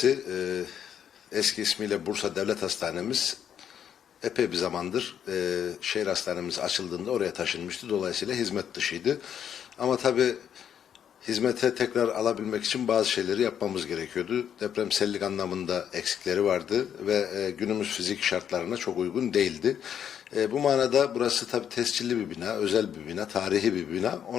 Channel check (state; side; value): quieter; right; 8.9 dB